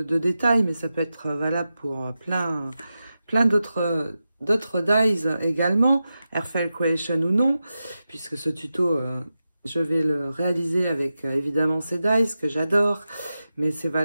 détails, mais ça peut être valable pour plein d'autres dies également, Airfile Creation ou non, puisque ce tuto, je vais le réaliser avec évidemment ces dies que j'adore, mais c'est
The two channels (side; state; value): both; inverted; correlation -0.91